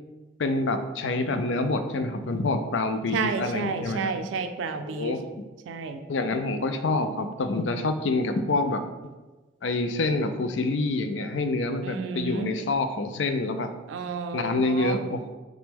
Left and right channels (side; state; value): both; normal; correlation 0.22